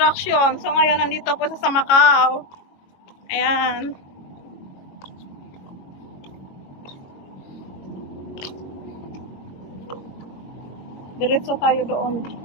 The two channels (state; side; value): late; right; 22 ms